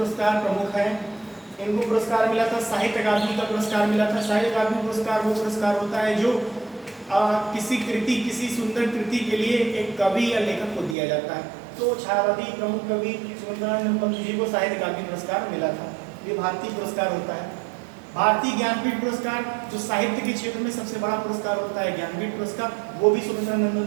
प्रमुख हैं, इनको पुरस्कार मिला था, साहित्य अकादमी का पुरस्कार मिला था। साहित्य अकादमी पुरस्कार वो पुरस्कार होता है जो किसी सुंदर कृति के लिए एक कवि या लेखक को दिया जाता है। तो छायावादी प्रमुख कवि सुमित्रानंदन पंत जी को साहित्य अकादमी पुरस्कार मिला था। ये भारतीय पुरस्कार होता है। भारतीय ज्ञानपीठ पुरस्कार, जो साहित्य के क्षेत्र में सबसे बड़ा पुरस्कार होता है, ज्ञानपीठ पुरस्कार, वो भी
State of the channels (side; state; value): left; drops out; at 11.0 s